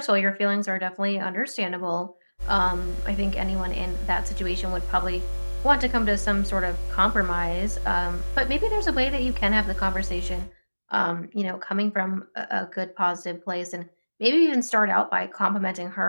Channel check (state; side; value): inverted; both; correlation -1.00